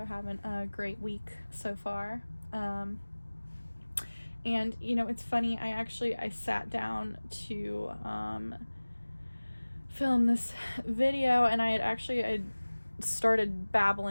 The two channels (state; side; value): inverted; both; correlation -1.00